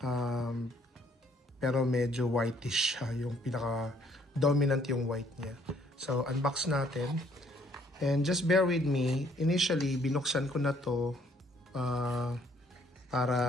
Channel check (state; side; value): normal; both; correlation 0.64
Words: pero medyo whitish siya, yung pinaka dominant yung white niya. So unbox natin. And just bear with me, initially binuksan ko na to